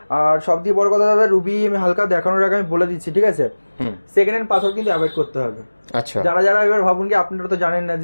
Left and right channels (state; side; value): inverted; both; correlation -1.00